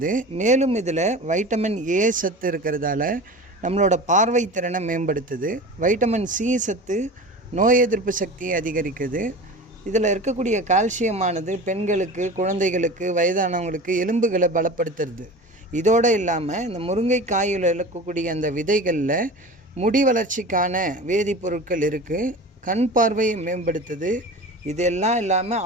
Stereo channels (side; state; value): both; normal; correlation 0.34